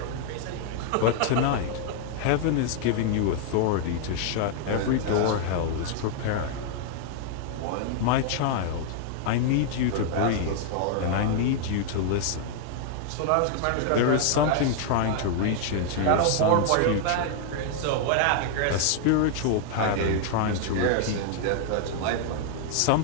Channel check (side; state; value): both; different; correlation 0.00